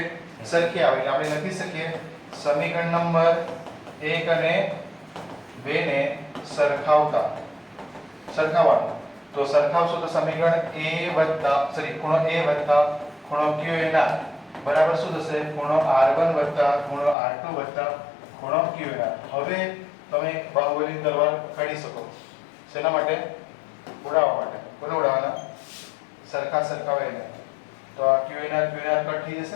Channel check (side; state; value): right; drops out; at 17.2 s